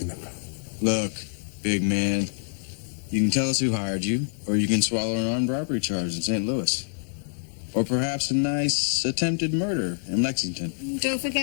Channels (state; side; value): silent; right; digital silence